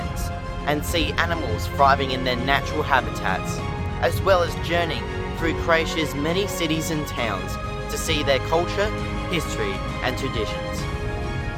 and see animals thriving in their natural habitats, as well as journeying through Croatia's many cities and towns to see their culture, history and traditions.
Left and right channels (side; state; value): both; identical; correlation 1.00